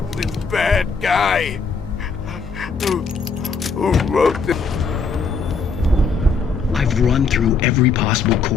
bad guy who wrote the... I've run through every possible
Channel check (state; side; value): quieter; right; 4.9 dB